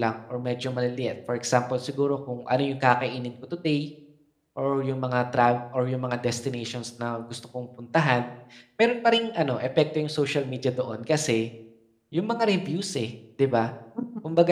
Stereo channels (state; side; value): identical; both; correlation 1.00